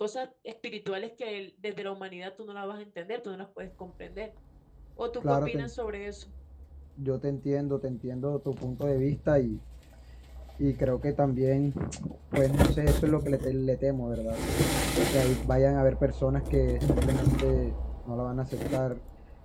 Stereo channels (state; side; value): identical; both; correlation 1.00